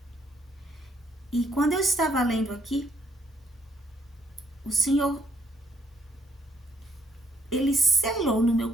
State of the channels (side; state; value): both; normal; correlation 0.69